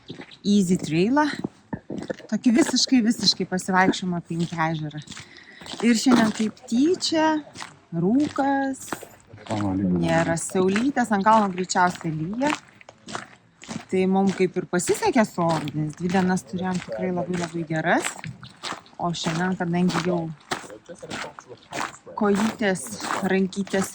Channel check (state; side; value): identical; both; correlation 1.00